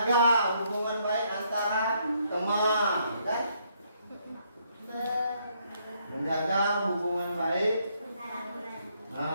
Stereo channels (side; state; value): both; inverted; correlation -0.72